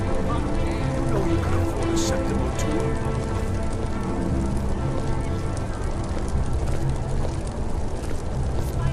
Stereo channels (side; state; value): both; identical; correlation 1.00